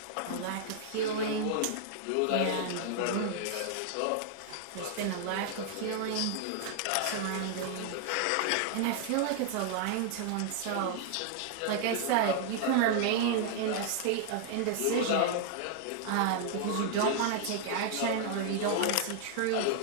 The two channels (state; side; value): different; both; correlation 0.00